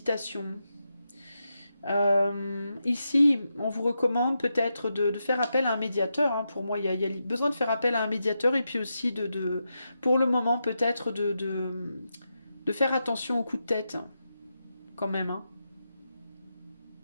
Ici, on vous recommande peut-être de faire appel à un médiateur, hein. Pour moi, il y a besoin de faire appel à un médiateur, et puis aussi pour le moment, peut-être de faire attention aux coups de tête, hein, quand même, hein.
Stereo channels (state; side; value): inverted; both; correlation -0.87